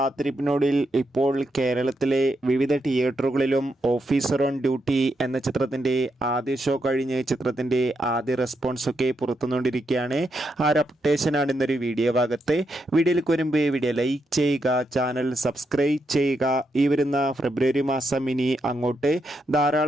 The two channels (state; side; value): normal; both; correlation 0.82